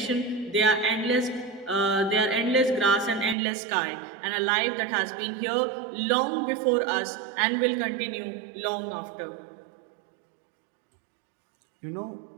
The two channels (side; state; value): left; drops out; at 3.4 s